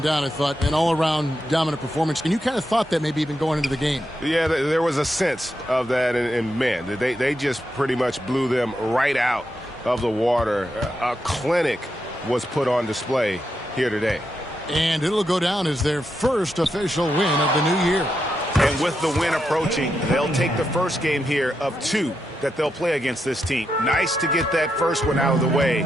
doubt, I thought, an all-around dominant performance. And you kind of thought that maybe even going into the game. Yeah, there was a sense of that, and man, they just pretty much blew them right out of the water. A clinic was put on display here today. And it'll go down as their first official win of the new year. And with the win approaching, they'll take the first game here of 2 that they'll play against this team. Nice to get that first one out of the way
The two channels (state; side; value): normal; both; correlation 0.84